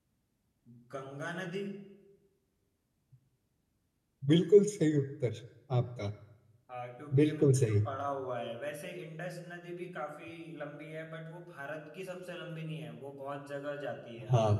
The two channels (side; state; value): both; identical; correlation 1.00